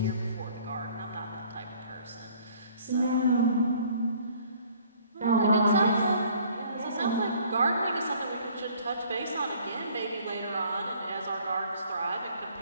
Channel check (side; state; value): both; inverted; correlation -0.57